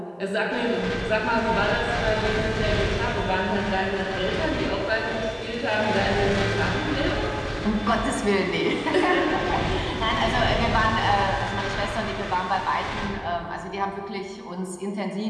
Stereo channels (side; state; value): both; identical; correlation 1.00